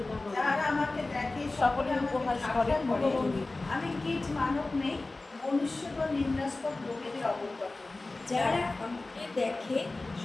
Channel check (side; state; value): right; quieter; 3.2 dB